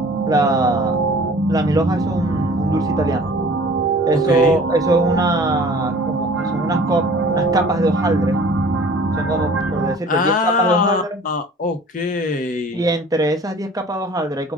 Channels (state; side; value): normal; both; correlation 0.48